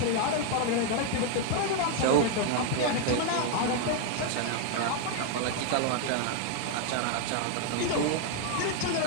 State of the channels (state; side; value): different; both; correlation 0.00